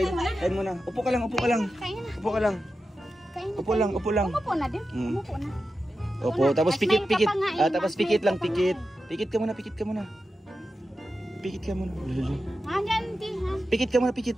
Kain muna. Upo ka lang, upo ka lang. Kain na. Upo ka lang. Kain na. Upo lang, upo lang. Umupo na din. Umupo na. Opo, tapos Mas pikit, main ka pikit. pa nga eh. Ah, tapos Mas pikit main lang, ka pa pikit. nga Pikit ka muna, pikit ka muna. Pikit ka muna. Hanggang di ha. Pikit ka muna, pikit,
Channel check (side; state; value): both; normal; correlation 0.91